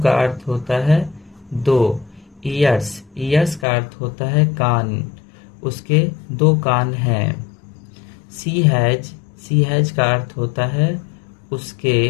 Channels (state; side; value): drops out; right; at 3.7 s